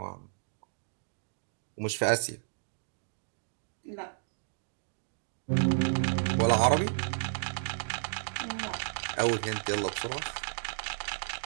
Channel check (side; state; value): left; silent; digital silence